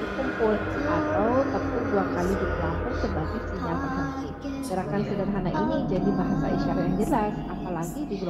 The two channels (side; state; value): both; identical; correlation 1.00